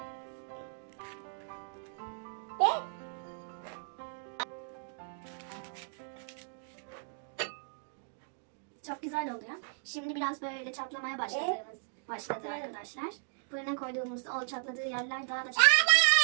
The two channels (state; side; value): silent; left; digital silence